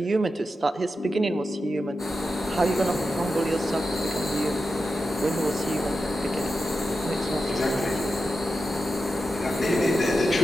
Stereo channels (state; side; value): normal; both; correlation 0.90